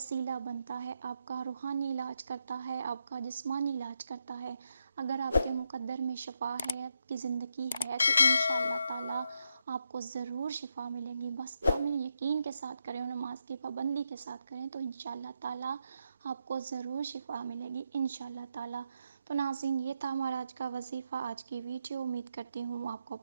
बनता है, आपका रूहानी इलाज करता है, आपका जिस्मानी इलाज करता है। अगर आपके मुक़द्दर में शिफ़ा है, आपकी ज़िंदगी है तो इंशाअल्लाह ताला आपको ज़रूर शिफ़ा मिलेगी। बस कामिल यकीन के साथ करें और नमाज की पाबंदी के साथ करें तो इंशाअल्लाह ताला आपको ज़रूर शिफ़ा मिलेगी इंशाअल्लाह ताला। तो नाज़रीन, ये था हमारा आज का वजीफ़ा, आज की वीडियो। उम्मीद करती हूँ आपको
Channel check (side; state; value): both; inverted; correlation -0.83